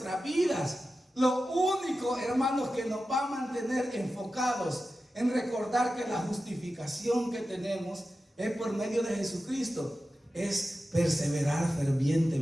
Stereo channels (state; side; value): normal; both; correlation 0.93